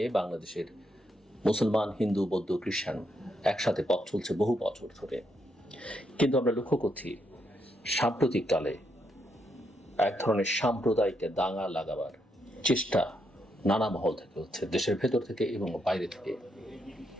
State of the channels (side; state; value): both; normal; correlation 0.79